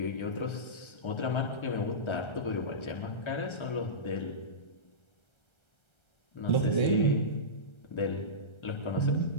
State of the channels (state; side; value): late; right; 1.3 ms